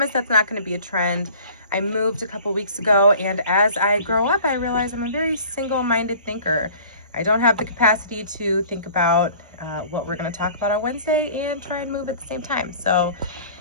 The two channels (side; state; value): both; inverted; correlation -0.47